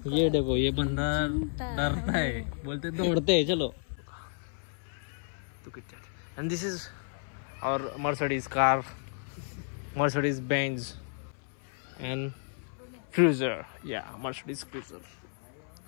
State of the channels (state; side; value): silent; right; 57 dB below the other